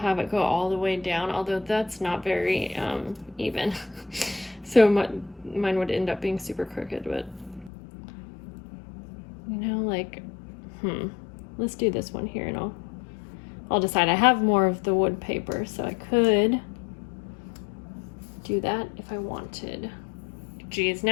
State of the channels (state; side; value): drops out; right; at 7.7 s